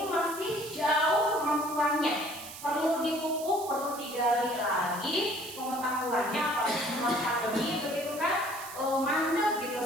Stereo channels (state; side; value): noise; right; hiss, 13 dB below the sound